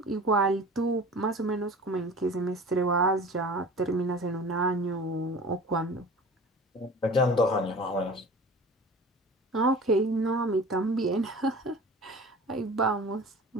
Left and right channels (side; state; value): both; normal; correlation 0.39